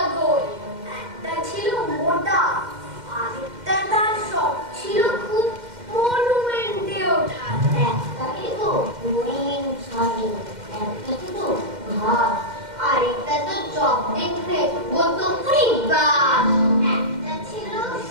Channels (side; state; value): left; late; 2.1 ms